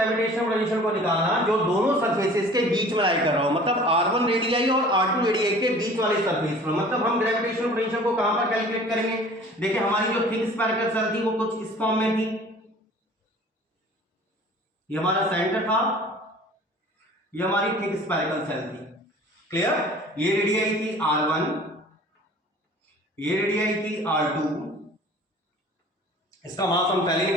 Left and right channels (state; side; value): normal; both; correlation 0.47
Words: पोटेंशियल को निकालना जो दोनों सरफेसेस के बीच में लाई कर रहा हो, मतलब r1 रेडियाई और r2 रेडियाई के बीच वाले सरफेस पर। मतलब हम ग्रेविटेशनल पोटेंशियल को कहां पर कैलकुलेट करेंगे, देखिए हमारी जो थिक स्फेरिकल सेल थी वो कुछ इस फॉर्म में थी, ये हमारा सेंटर था, ये हमारी थिक स्फेरिकल सेल थी, क्लियर। ये रेडियाई थी r1, ये रेडियाई थी r2, इसका मास हम पहले